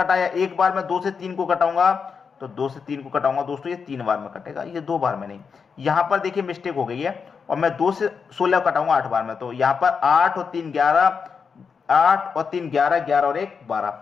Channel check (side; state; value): right; quieter; 5.8 dB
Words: एक बार मैं 2 से 3 को कटाऊंगा, तो 2 से 3 को कटाऊंगा दोस्तों, ये 3 बार में कटेगा, ये 2 बार में नहीं। यहां पर देखिए मिस्टेक हो गई है, और मैं 2 से 16 कटाऊंगा 8 बार में। तो यहां पर 8 और 3 11, 8 और 3 11, 11 और 1